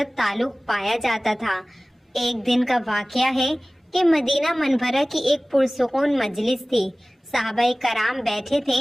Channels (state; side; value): normal; both; correlation 0.98